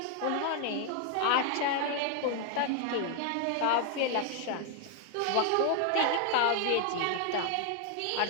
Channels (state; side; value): different; both; correlation 0.00